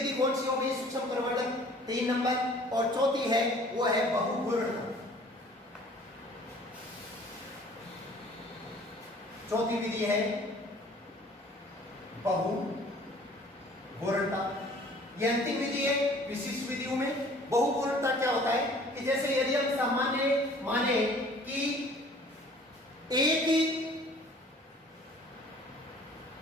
कौन सी हो गई? सूक्ष्म प्रवर्धन 3 नंबर। और चौथी है वो है बहुघूर्णता। चौथी विधि है बहुघूर्णता। यह अंतिम विधि है विशिष्ट विधियों में। बहुघूर्णता क्या होता है कि जैसे यदि हम सामान्य माने कि एक ही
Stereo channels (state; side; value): normal; both; correlation 0.52